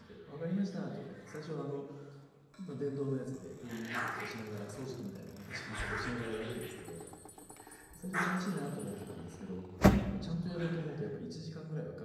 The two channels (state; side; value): identical; both; correlation 1.00